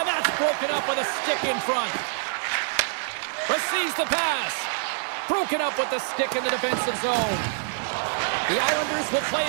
that's broken up with a stick in front. Receives the pass. Broken up with the stick in the defensive zone. The Islanders will play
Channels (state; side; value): silent; left; digital silence